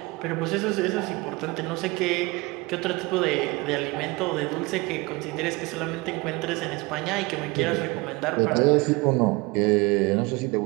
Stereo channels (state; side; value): quieter; left; 24.1 dB